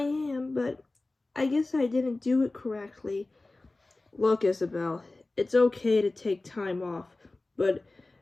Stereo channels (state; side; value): quieter; right; 3.1 dB